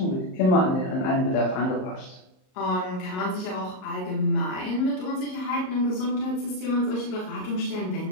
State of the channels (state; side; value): late; right; 38 ms